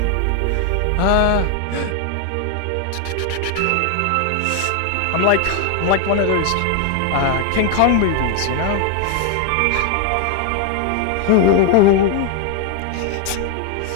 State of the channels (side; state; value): both; different; correlation 0.00